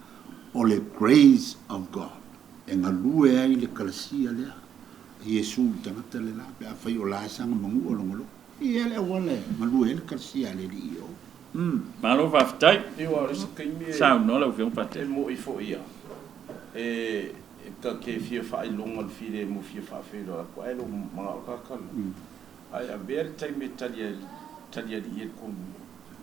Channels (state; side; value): quieter; left; 8.8 dB